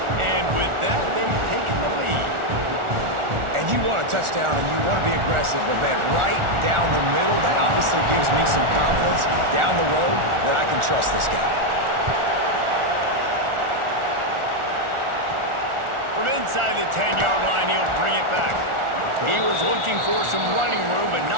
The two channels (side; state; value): left; late; 1.4 ms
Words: And with that, they've taken the lead. And you want a touchdown and you want to be aggressive, but man, right down the middle, that obviously gives me some confidence down the road that I can trust this guy. From inside the 10-yard line, he'll bring it back. He was looking for some running room, but